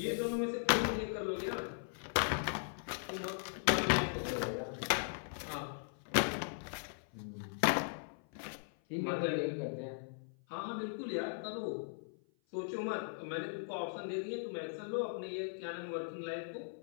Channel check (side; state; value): right; silent; 52 dB below the other